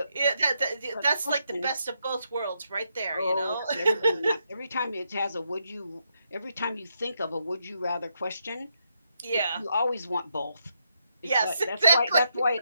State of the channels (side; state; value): both; inverted; correlation -0.79